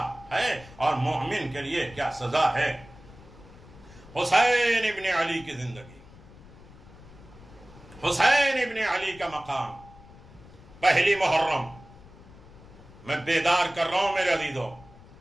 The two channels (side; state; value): left; noise; rumble, 21 dB below the sound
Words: ہے اور مومن کے لیے کیا سزا ہے. حسین ابن علی کی زندگی، حسین ابن علی کا مقام. پہلی محرم میں بیدار کر رہا ہوں میرے عزیزو.